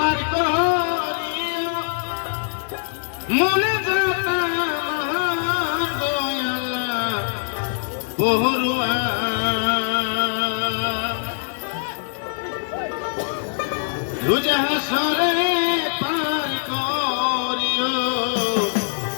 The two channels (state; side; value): silent; right; digital silence